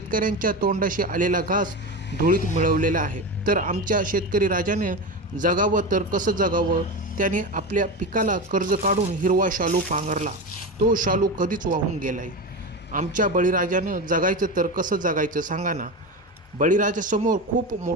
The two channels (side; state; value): both; normal; correlation 0.22